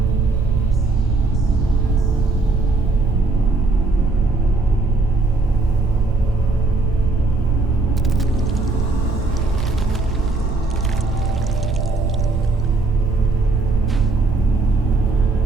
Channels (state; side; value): quieter; left; 3.5 dB